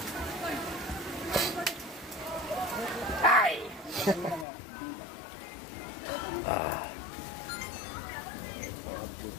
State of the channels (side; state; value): right; drops out; at 4.5 s